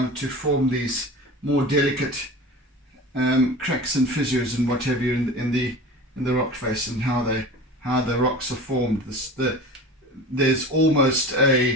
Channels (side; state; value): both; normal; correlation 0.35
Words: form these more delicate cracks and fissures and what have you in the rock face, and how the rocks are formed. There's almost